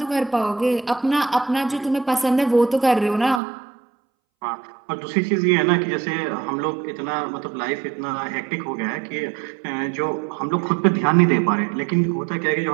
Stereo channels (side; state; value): left; drops out; at 3.4 s